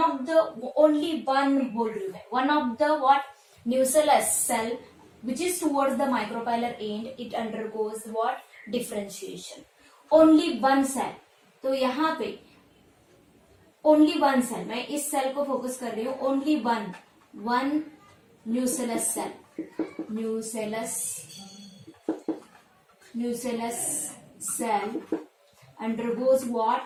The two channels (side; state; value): both; identical; correlation 1.00